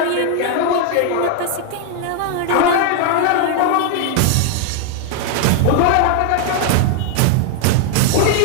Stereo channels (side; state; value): both; different; correlation 0.00